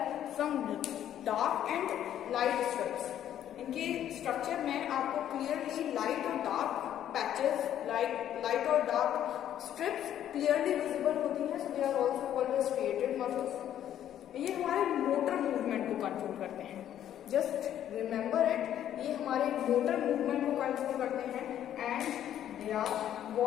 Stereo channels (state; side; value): quieter; right; 10.9 dB